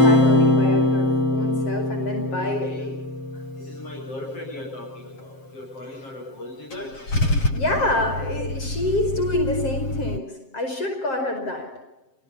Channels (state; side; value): late; right; 7.6 ms